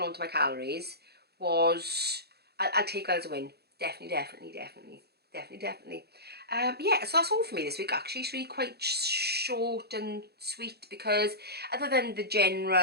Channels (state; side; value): late; left; 0.47 ms